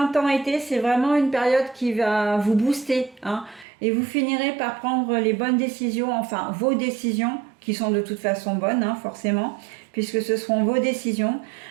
c'est vraiment une période qui va vous booster. Hein, et vous finirez par prendre les bonnes décisions, enfin vos décisions, qui sont de toute façon bonnes, hein, forcément, puisque ce seront vos décisions.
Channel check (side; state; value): left; drops out; at 3.7 s